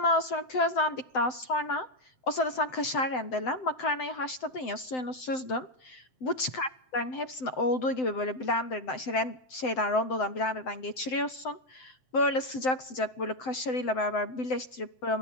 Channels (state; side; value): late; right; 7.8 ms